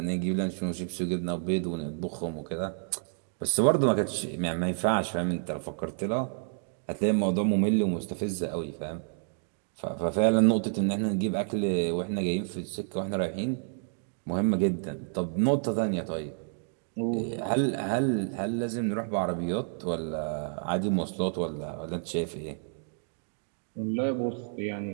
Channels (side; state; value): left; silent; digital silence